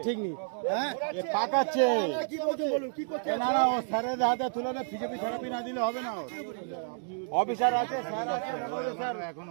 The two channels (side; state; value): left; silent; digital silence